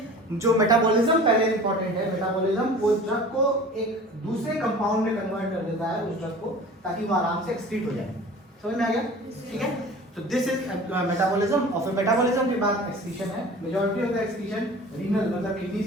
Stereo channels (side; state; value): both; normal; correlation 0.41